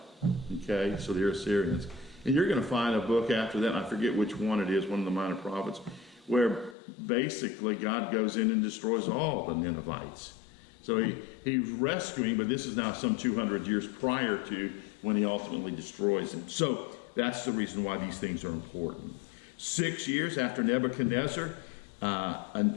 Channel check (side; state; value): right; drops out; at 6.8 s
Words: Okay, so they're Assyrians. And you're going to find a book after that, I forget which one it is, one of the minor prophets, where basically God goes in and destroys all the Ninevites. So he's rescuing, but this is now some 200 years prior to when he ultimately destroys them. So that's the reason why these things are important. 6 years after Nebuchadnezzar